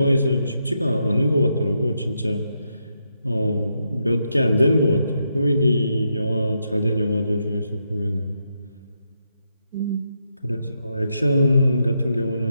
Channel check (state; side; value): inverted; both; correlation -0.82